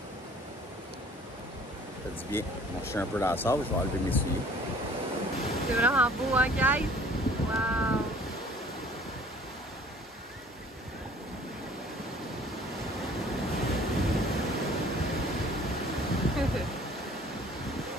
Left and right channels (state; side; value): normal; both; correlation 0.53